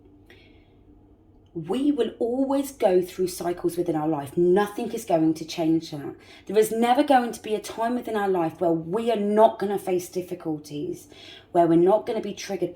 we will always go through cycles within our life. Nothing is going to change that. There is never going to be a time within our life where we are not going to face difficulties, where we're not going to be triggered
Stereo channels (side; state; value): both; identical; correlation 1.00